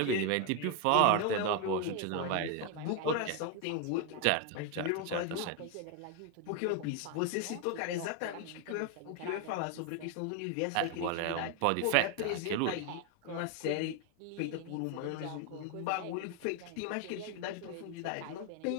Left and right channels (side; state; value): both; different; correlation 0.01